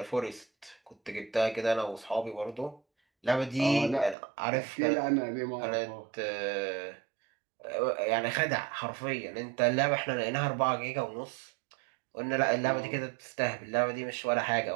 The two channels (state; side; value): drops out; left; at 4.2 s